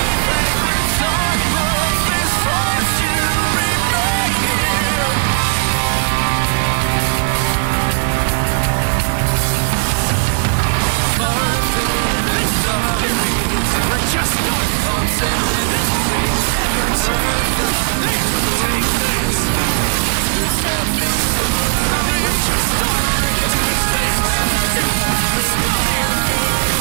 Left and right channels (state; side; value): silent; left; digital silence